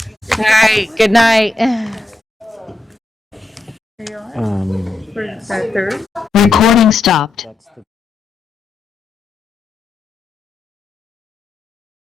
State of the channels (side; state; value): right; quieter; 3.3 dB